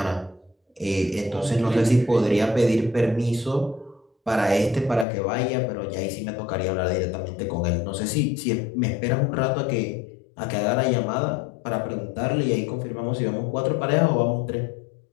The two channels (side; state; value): right; drops out; at 5.1 s